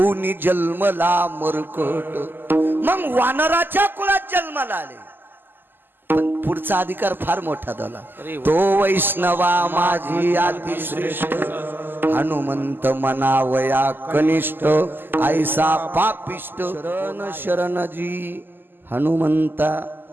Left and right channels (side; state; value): left; late; 0.094 ms